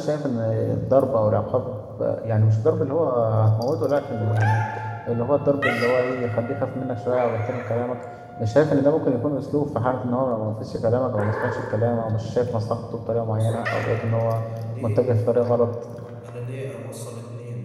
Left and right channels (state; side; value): identical; both; correlation 1.00